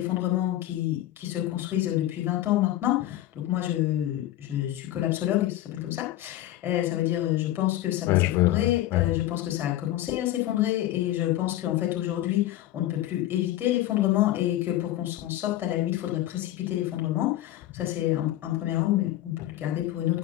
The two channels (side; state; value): right; quieter; 14.3 dB